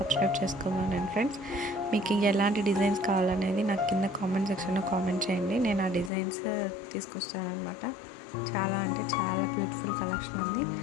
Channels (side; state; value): right; drops out; at 6.1 s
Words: చేసుకోమనండి ఫ్రెండ్స్. మీకు ఎలాంటి డిజైన్స్ కావాలనేది నాకు కింద కామెంట్ సెక్షన్లో కామెంట్ చేయండి. నేను ఆ డిజైన్స్ తీసుకొస్తానమాట. చాలా అంటే చాలా బ్యూటిఫుల్ కలెక్షన్ ఉంది.